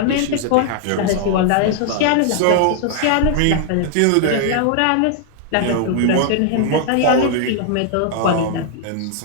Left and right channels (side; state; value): both; different; correlation 0.00